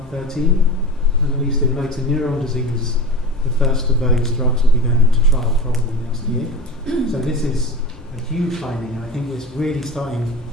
And at least in motor neuron disease, the first of those drugs will be going into trial probably next year. So this is a huge finding, and I think it's really starting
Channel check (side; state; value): both; normal; correlation 0.30